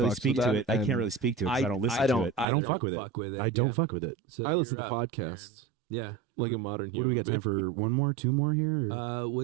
fucks speak with to that, it. I and can't really speak to it because I don't listen I to don't- it. I don't I fuck don't with fuck it. with it, I don't yeah. fuck with it. So I listen to you're up, podcasts Yeah. like a modern What do human. we got time being. for? One more, two more here? or-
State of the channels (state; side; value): drops out; left; at 2.5 s